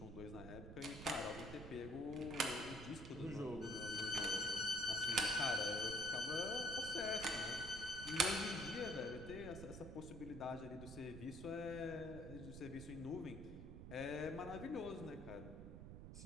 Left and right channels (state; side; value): noise; right; rumble, 10 dB below the sound